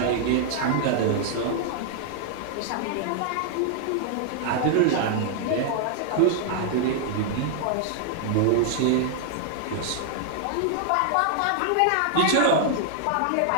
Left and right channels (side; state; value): both; different; correlation 0.00